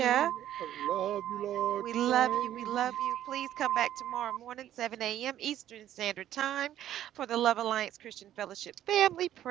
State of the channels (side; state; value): left; quieter; 11.9 dB